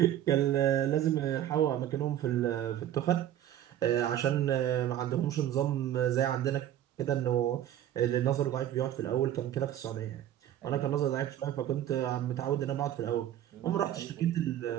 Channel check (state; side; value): quieter; left; 11.6 dB